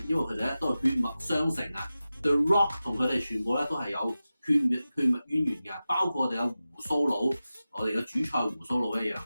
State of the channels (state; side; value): inverted; both; correlation -0.94